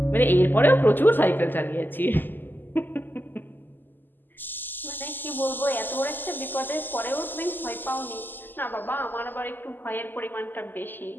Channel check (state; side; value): late; right; 0.091 ms